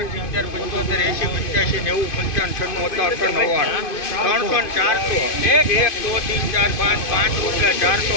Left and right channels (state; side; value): late; right; 2.5 ms